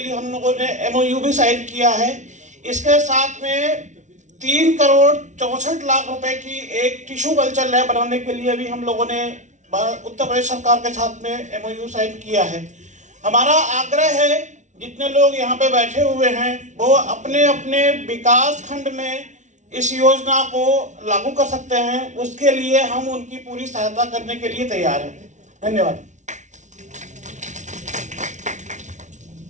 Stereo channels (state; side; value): late; left; 0.35 ms